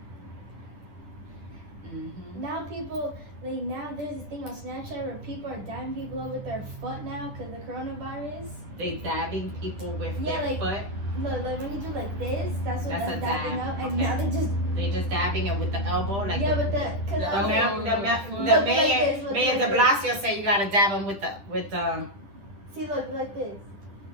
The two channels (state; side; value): late; left; 10 ms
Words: Mm-hmm. Now people, like now there's this thing on Snapchat where people are dabbing people up with their foot now because the coronavirus. They dabbing people with Yeah, their like- foot. Look, like when you do like this, that's what That's that's a dabbing dab, up, and okay. now they just They just dabbing it with the elbow, like yeah, the, with the cause The the, I'm mayor, like, the, mayor, Look the like mayor, this, look Mayor like de this. Blasio said you gotta dab them with see, look like this,